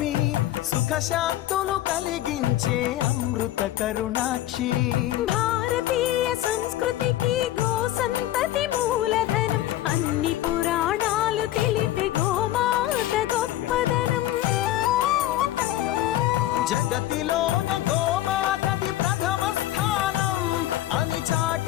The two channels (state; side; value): quieter; right; 14.1 dB